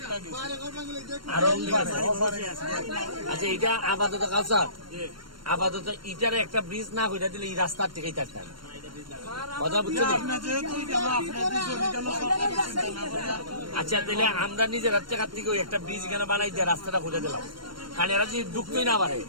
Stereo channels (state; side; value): late; left; 0.72 ms